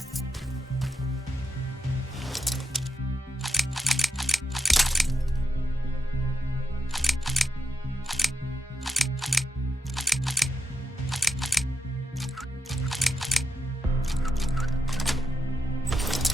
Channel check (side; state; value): both; normal; correlation 0.85